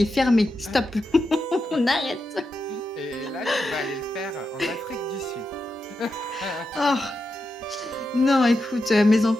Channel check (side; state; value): both; normal; correlation 0.88